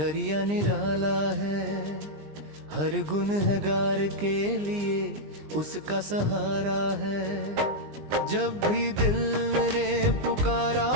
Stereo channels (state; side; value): late; left; 20 ms